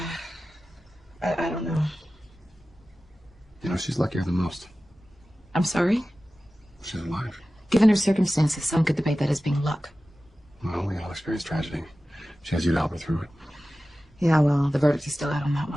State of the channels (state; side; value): normal; both; correlation 0.95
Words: I don't know. You know, she's luckier than most. I'm sorry? She's alive. Given her circumstances, some could debate that as being luck. Well, we all experience tragedy. She has you to help her through it. Yeah, well, the verdict is still out on that